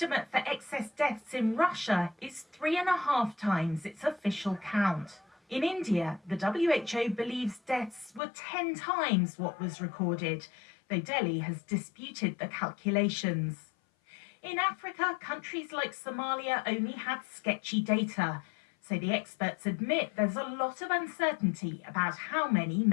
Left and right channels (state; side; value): drops out; right; at 8.2 s